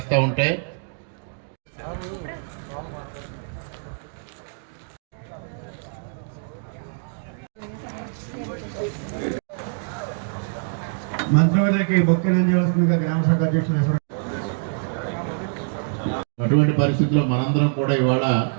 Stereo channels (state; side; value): silent; left; digital silence